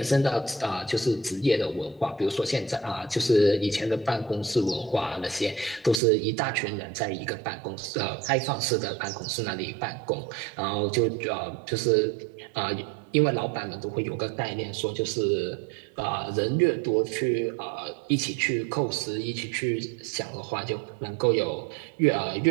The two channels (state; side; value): drops out; left; at 6.0 s